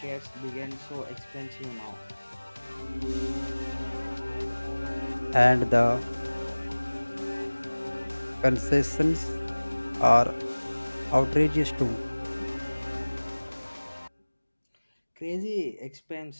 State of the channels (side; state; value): both; inverted; correlation -1.00